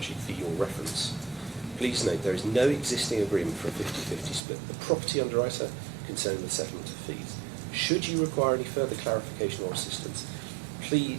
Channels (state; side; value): drops out; left; at 4.4 s